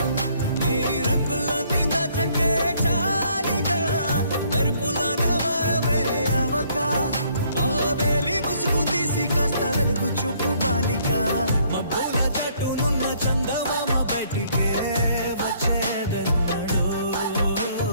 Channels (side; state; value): both; inverted; correlation -0.65